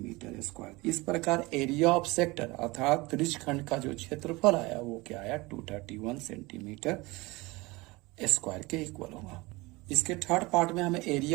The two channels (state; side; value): quieter; left; 22.9 dB